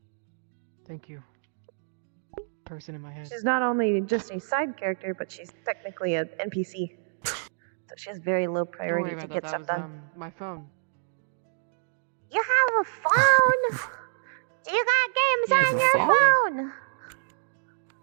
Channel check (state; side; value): silent; left; digital silence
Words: Thank you. Person in my head. She's not only just a side character, but she's technically an NPC. So she has very low Don't worry priority about to that. get That stuff was done. my phone. You have a phone? Do you got games on your phone?